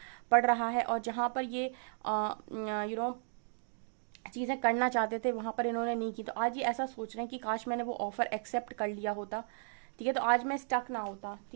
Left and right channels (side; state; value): left; silent; digital silence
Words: पड़ रहा है और जहां पर ये चीजें करना चाहते थे वहां पर इन्होंने नहीं की। तो आज ये ऐसा सोच रहे हैं कि काश मैंने वो ऑफर एक्सेप्ट कर लिया होता, ठीक है, तो आज मैं स्टक ना होता,